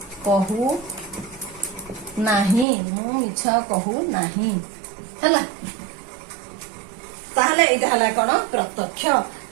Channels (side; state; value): left; drops out; at 2.7 s